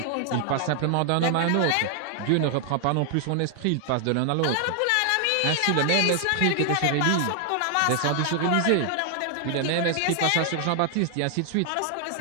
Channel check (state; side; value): different; both; correlation 0.00